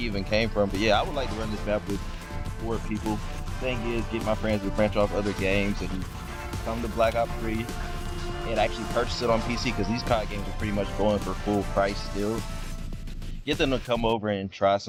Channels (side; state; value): both; identical; correlation 1.00